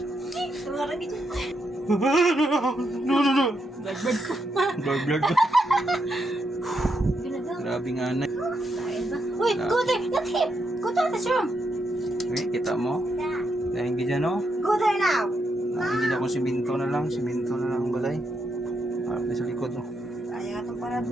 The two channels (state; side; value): normal; both; correlation 0.81